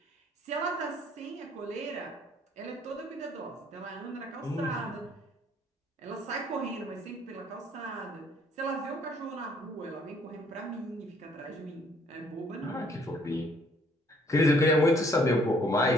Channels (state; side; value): normal; both; correlation 0.62